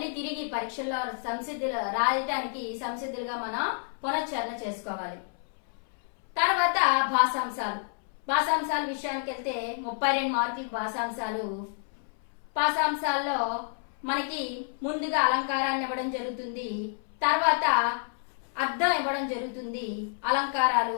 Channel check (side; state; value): right; silent; 58 dB below the other